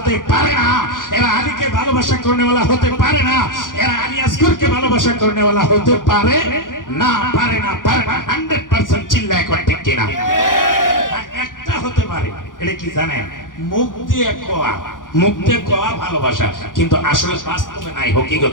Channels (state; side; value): late; right; 0.89 ms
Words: পারে না, এরা আলীকে ভালোবাসা করনেওয়ালা হতে পারে না, এরা আলী আসগরকে ভালোবাসা করনেওয়ালা হতে পারে না, পারে না, পারে না। 100% চিল্লায় কোন ঠিক কিনা? একটা হতে পারে, এটা কি জানেন? মুখ দিয়ে কোয়া, মুখ দিয়ে কোয়া ভালোবাসা, কিন্তু আসলে বাস্তবে নাই,